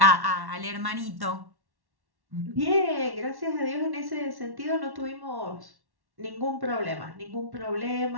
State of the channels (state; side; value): late; left; 1.1 ms